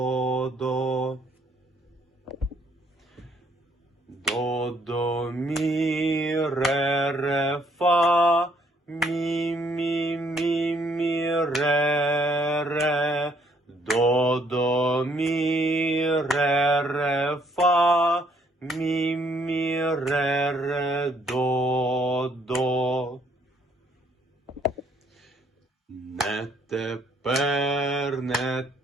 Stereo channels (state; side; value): normal; both; correlation 0.67